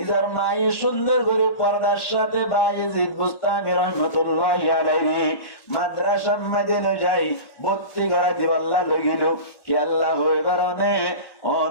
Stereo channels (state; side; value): late; right; 1.1 ms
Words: মায়ের সুন্দর করে পর্দার সাথে বায়েজিদ বুস্তামি রহমতুল্লাহি আলাইহি মাদ্রাসা মাইদে লই যাই ভর্তি করা দিবাল্লাহ লগিল কি আল্লাহ হই কারণে